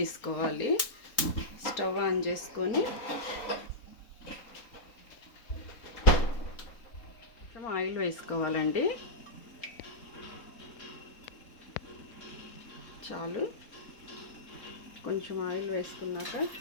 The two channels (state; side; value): late; right; 3.9 ms